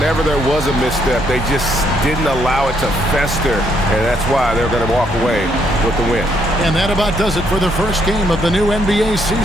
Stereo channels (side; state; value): both; normal; correlation 0.72